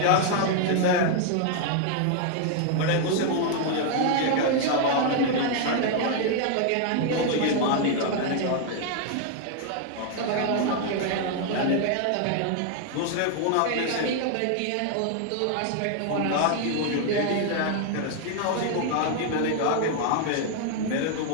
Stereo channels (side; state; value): both; different; correlation 0.00